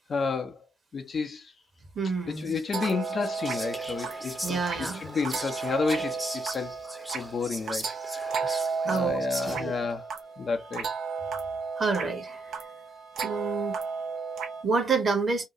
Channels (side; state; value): both; normal; correlation 0.75